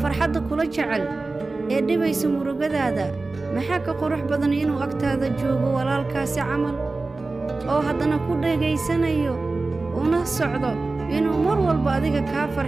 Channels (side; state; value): left; quieter; 3.5 dB